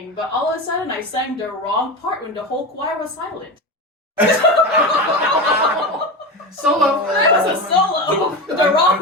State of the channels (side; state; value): both; normal; correlation 0.22